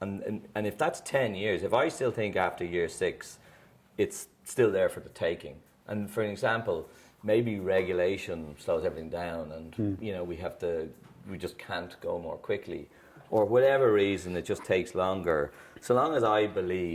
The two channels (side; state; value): both; identical; correlation 1.00